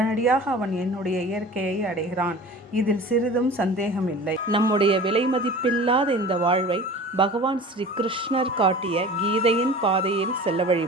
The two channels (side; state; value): both; normal; correlation 0.39